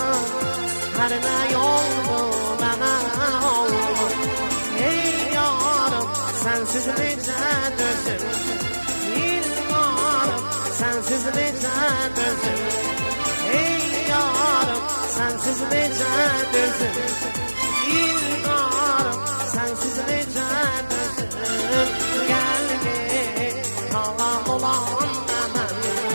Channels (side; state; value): both; inverted; correlation -1.00